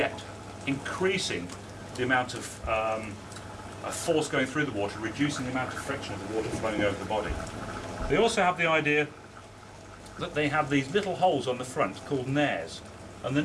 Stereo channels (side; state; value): both; identical; correlation 1.00